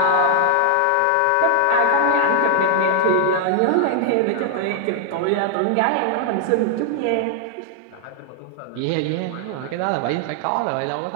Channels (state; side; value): different; both; correlation 0.00